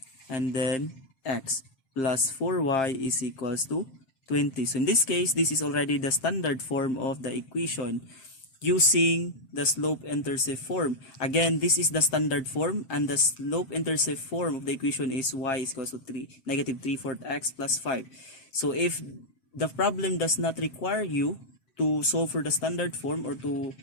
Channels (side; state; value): right; late; 7.6 ms